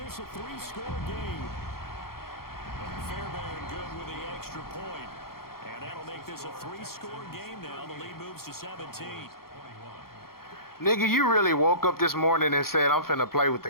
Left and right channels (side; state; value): right; late; 0.93 ms